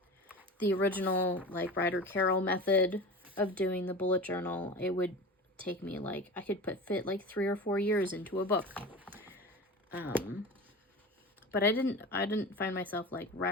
the original like Ryder Carroll method of doing the bullet journal, it would take me like, I could fit like 3 or 4 years into a book. But I didn't find myself like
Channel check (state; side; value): normal; both; correlation 0.32